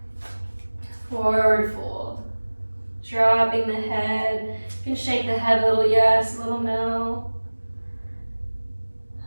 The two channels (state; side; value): inverted; both; correlation -1.00